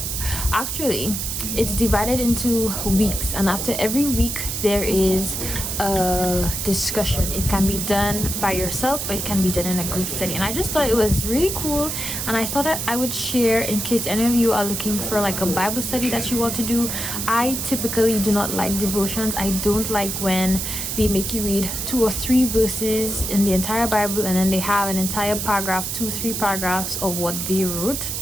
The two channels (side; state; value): right; noise; hiss, 3 dB below the sound